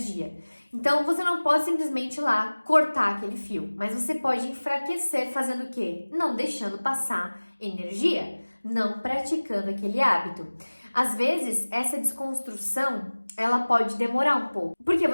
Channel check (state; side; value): inverted; both; correlation -1.00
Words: Então, você não pode simplesmente ir lá cortar aquele fio, mas você pode enfraquecer fazendo o quê? Não deixando passar energia, não praticando aquele hábito. Às vezes, essa desconstrução, ela pode demorar um pouco, porque